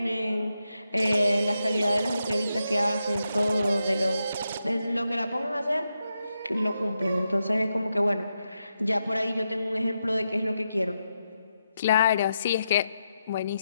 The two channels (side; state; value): both; inverted; correlation -0.85